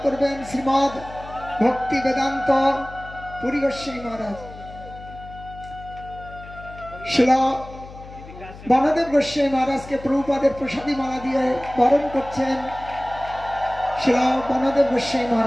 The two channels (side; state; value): left; noise; hum, 16 dB below the sound